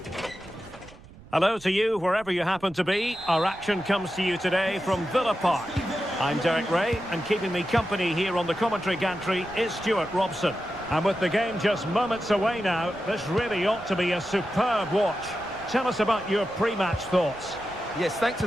Hello to you, wherever you happen to be. Our action comes to you today from Villa Park. I'm Derek Ray, and keeping me company here on the commentary gantry is Stuart Robson. And with the game just moments away now, this really ought to be a superb watch. Tell us about your pre-match thoughts. Yes, thanks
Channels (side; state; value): right; noise; rumble, 21 dB below the sound